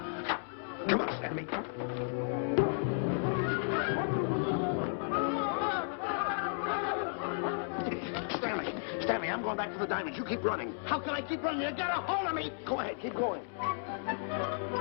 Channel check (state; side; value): silent; right; digital silence